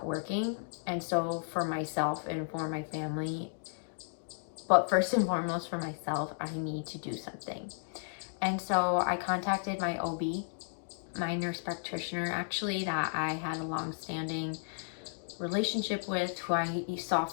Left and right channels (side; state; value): right; silent; digital silence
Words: working. And so for myself and for my family, but first and foremost for myself, I need to do something. And so I contacted my OB, my nurse practitioner, actually, that I had a long-standing relationship with, who I saw